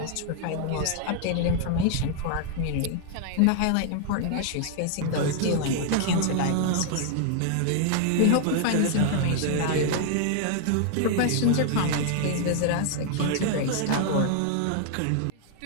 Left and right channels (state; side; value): different; both; correlation 0.00